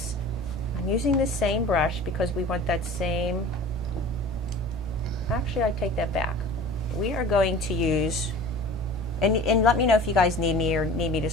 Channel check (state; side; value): normal; both; correlation 0.41